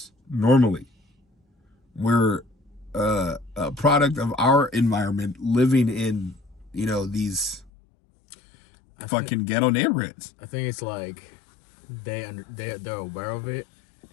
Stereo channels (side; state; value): right; drops out; at 7.7 s